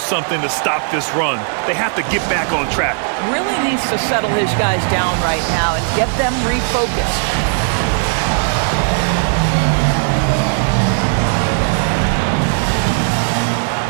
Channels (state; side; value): silent; left; 63 dB below the other